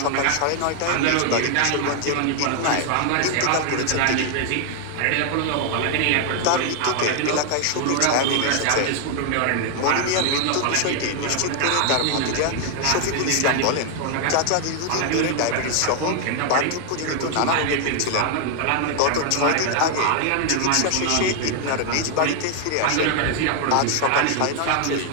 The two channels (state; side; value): different; both; correlation 0.00